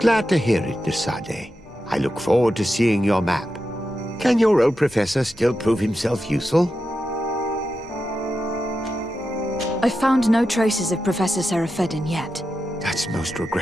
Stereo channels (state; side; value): normal; both; correlation 0.89